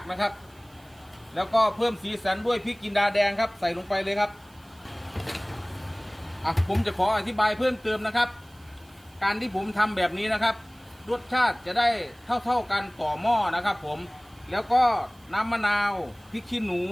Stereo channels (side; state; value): right; noise; hiss, 29 dB below the sound